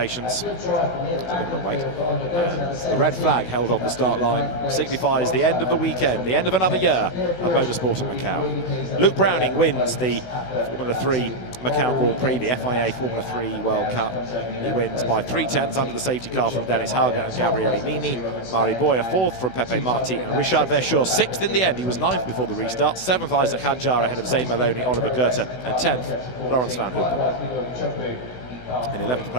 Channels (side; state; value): right; late; 16 ms